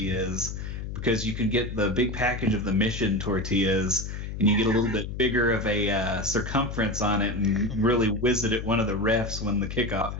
because you can get the big package of the Mission tortillas, and you get a little bit bigger of a circumference on it and really whiz it at one of the refs when the kickoff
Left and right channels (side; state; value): left; noise; hum, 6 dB below the sound